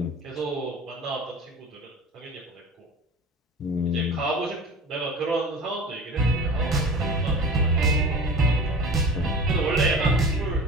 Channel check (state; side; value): normal; both; correlation 0.36